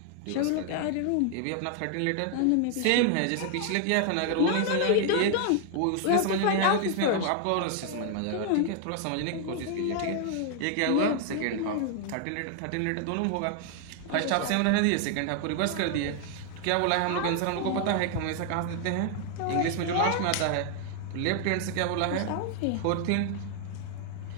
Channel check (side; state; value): both; different; correlation 0.00